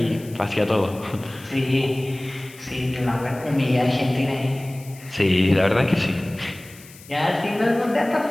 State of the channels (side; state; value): left; noise; hiss, 21 dB below the sound